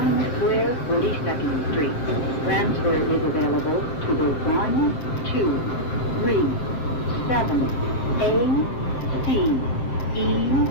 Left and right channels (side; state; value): right; late; 7.8 ms